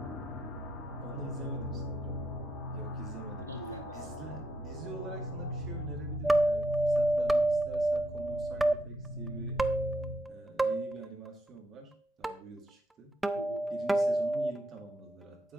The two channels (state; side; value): normal; both; correlation 0.79